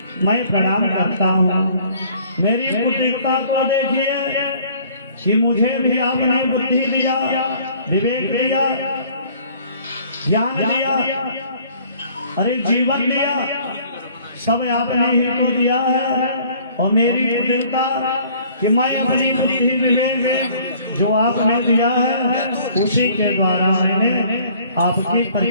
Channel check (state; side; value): inverted; both; correlation -0.55